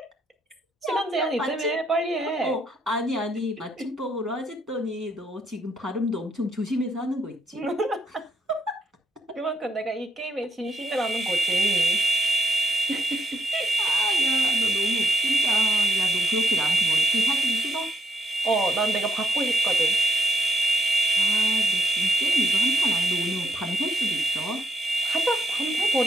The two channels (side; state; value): both; normal; correlation 0.75